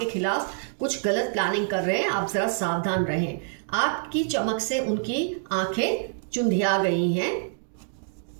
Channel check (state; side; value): silent; left; digital silence